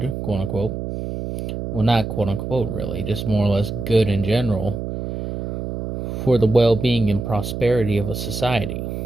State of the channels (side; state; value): right; noise; hum, 5 dB below the sound